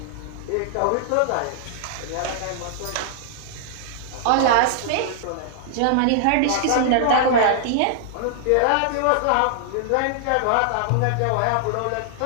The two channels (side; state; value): both; different; correlation -0.01